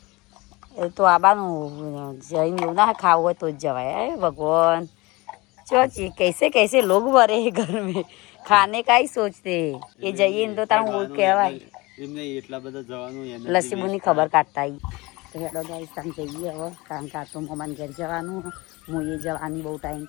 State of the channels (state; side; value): quieter; right; 23.1 dB